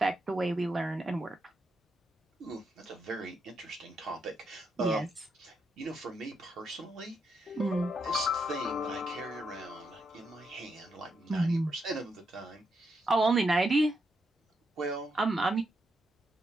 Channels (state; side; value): normal; both; correlation 0.81